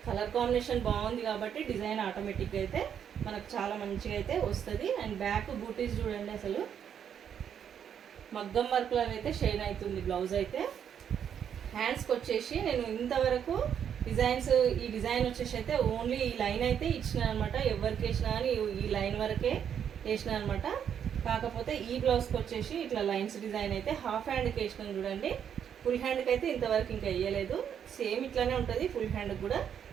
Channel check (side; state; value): left; quieter; 8.5 dB